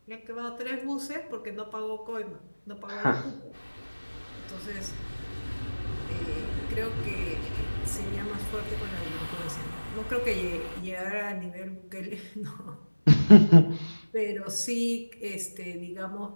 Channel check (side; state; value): both; inverted; correlation -1.00